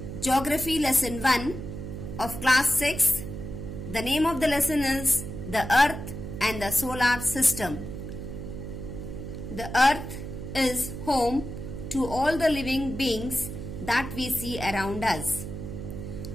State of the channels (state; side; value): noise; right; hum, 8 dB below the sound